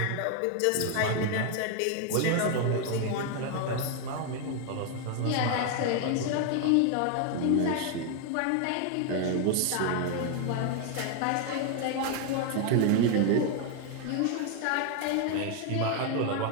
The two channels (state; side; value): different; both; correlation 0.01